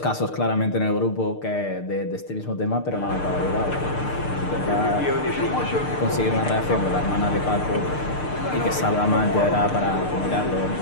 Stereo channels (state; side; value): late; right; 6.6 ms